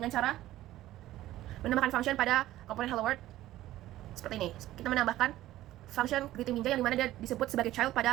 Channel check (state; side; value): quieter; left; 14.9 dB